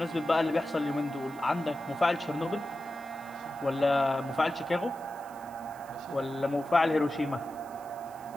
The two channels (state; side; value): noise; right; hiss, 24 dB below the sound